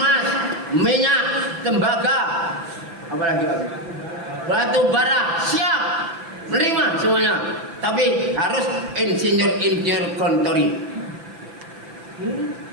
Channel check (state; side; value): late; left; 5.9 ms